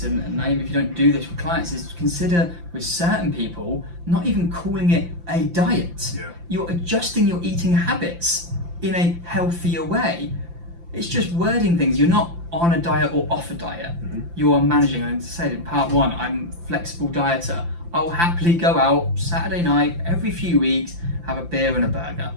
and Naim, if you don't do this with clients, is consider with certain people not even calling it a diet. Yeah. You're adjusting your eating habits in a healthier way. It's just wording things. You're not on a diet or off a diet. Mm-hmm. You are managing. I said in part 1, I'm a flexible dieter. I'll happily go out Saturday night every few weeks, have a beer and a burger,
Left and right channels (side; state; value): left; late; 5.8 ms